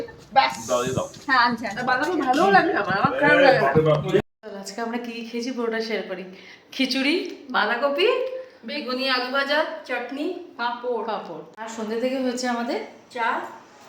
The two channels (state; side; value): identical; both; correlation 1.00